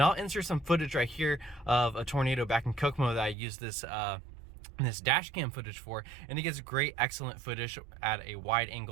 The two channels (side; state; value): left; drops out; at 3.4 s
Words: I'll insert some footage right here of a tornado back in Kokomo that I used this dash cam footage for, and it gets great, excellent footage at a wide